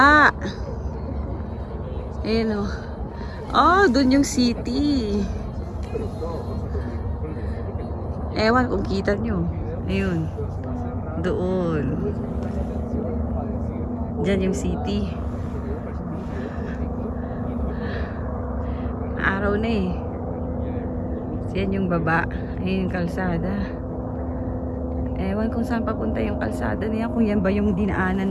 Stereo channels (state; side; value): identical; both; correlation 1.00